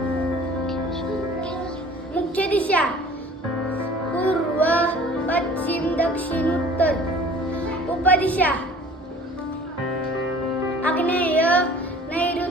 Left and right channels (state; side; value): normal; both; correlation 0.48